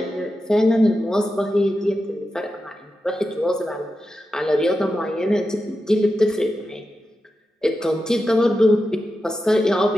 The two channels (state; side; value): normal; both; correlation 0.90